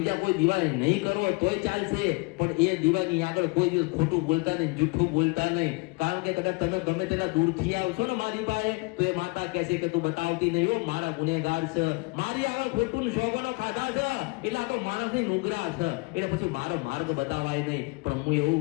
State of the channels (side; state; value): right; quieter; 27.7 dB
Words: કોઈ દીવા નહીં કરો તોય ચાલશે, પણ એ દીવાની આગળ કોઈ દિવસ ખોટું બોલતા નહીં, જૂઠું બોલતા નહીં. કારણ કે કદાચ તમે ગમે તેના દૂરથી આવશો ને મારી પાસે તો એ માતા કહેશે કે તું બતાવતી નહીં હો, મારા ગુનેગાર છે, મારી આગળ ખોટું શોભનો ખાધા છે એટલે આ તો માણસની નુગરા છે, એટલે પછી મારો માર્ગ બતાવાય નહીં. પણ હું